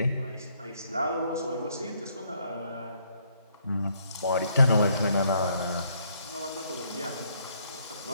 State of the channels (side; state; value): both; inverted; correlation -0.69